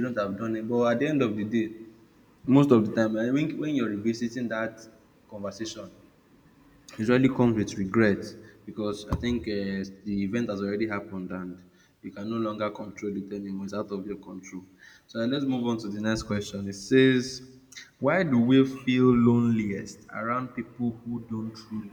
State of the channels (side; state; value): both; identical; correlation 1.00